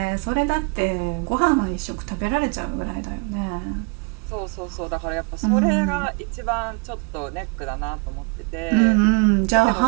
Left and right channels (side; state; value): left; quieter; 33.2 dB